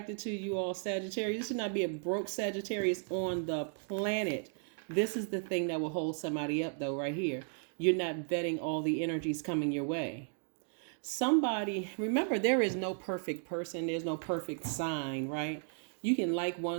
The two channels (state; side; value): silent; left; 55 dB below the other